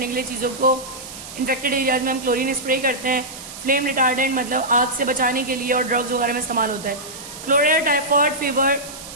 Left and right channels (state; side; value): noise; right; hiss, 13 dB below the sound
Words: के लिए चीजों को इन्फेक्टेड एरियाज में हम क्लोरीन स्प्रे करते हैं. फ्लेम रिटार्डेंट मतलब आग से बचाने के लिए और ड्रग्स वगैरह में इस्तेमाल होता है. Cholera, typhoid, fever